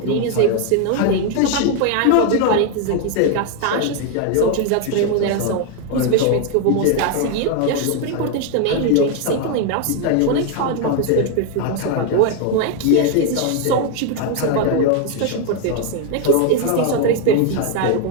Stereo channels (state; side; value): different; both; correlation 0.01